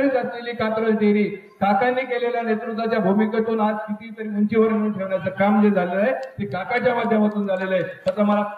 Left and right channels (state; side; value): identical; both; correlation 1.00